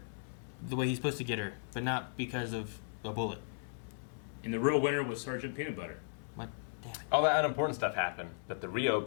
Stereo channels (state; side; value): silent; right; digital silence